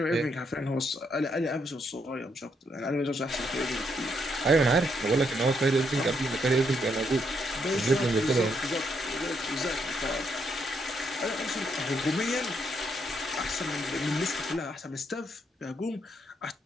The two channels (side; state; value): both; normal; correlation 0.76